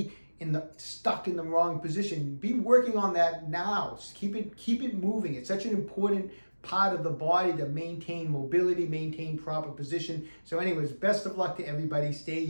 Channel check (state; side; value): inverted; both; correlation -1.00